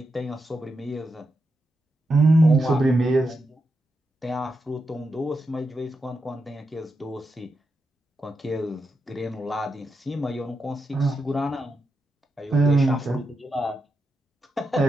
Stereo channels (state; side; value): normal; both; correlation 0.86